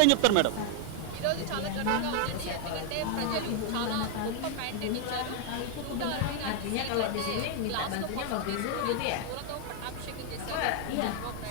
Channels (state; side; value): different; both; correlation 0.00